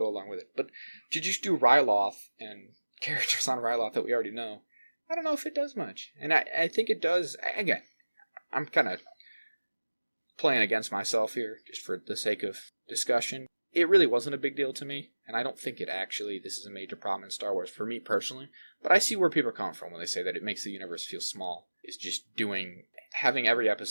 along with it. But to just do Ryloth and characters on Ryloth that we already know, I don't know if it does much. And I think it does. Again, I'm kind of playing against myself here just for the sake of discussion. It really wasn't a big deal to me, and I don't think this is a major problem in Star Wars for me personally, but I see where people are coming from when they say that it makes the universe feel small. Is just having every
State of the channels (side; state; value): both; inverted; correlation -1.00